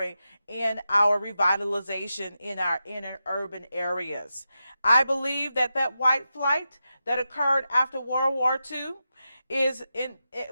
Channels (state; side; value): inverted; both; correlation -0.89